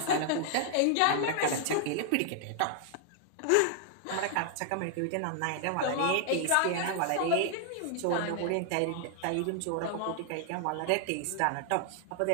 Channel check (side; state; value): both; different; correlation 0.00